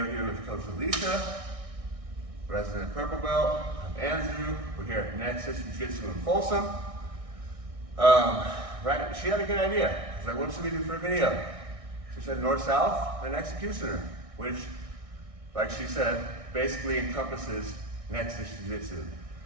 here with Coach Alicia, resident purple belt. I'm Andrew. We're here at Nexus Jiu-Jitsu in Folsom. Right, she had a good idea. I was like, what should we do for a video? She said north-south and executioner, which, like she said, basically encompasses Nexus Jiu-Jitsu.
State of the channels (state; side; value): late; left; 1.6 ms